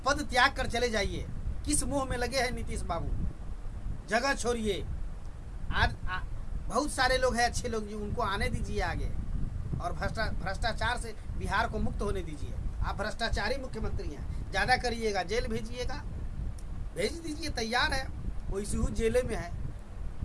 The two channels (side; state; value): both; identical; correlation 1.00